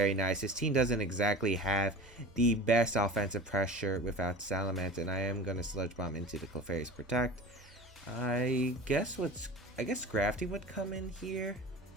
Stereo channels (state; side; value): normal; both; correlation 0.37